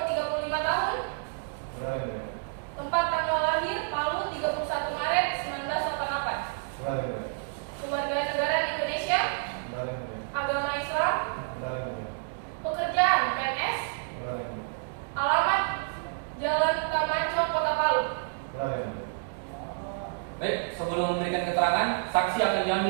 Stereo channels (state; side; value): silent; left; digital silence